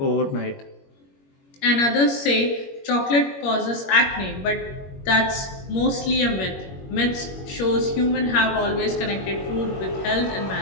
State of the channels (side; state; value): right; late; 21 ms